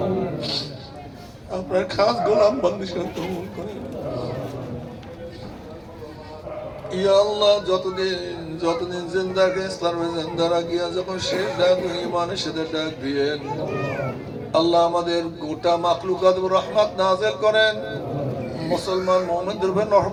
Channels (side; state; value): both; identical; correlation 1.00